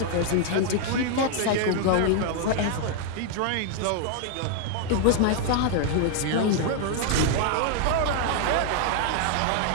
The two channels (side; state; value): both; different; correlation 0.00